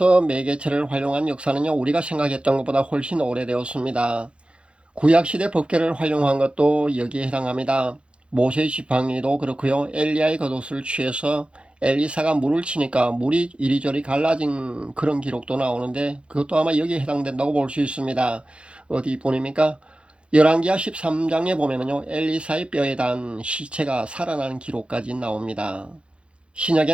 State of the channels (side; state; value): left; late; 0.058 ms